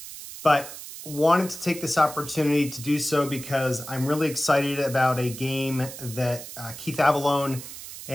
but wanted to take this opportunity to do so because I'm really excited about a game that Keith Avalone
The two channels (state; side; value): noise; right; hiss, 12 dB below the sound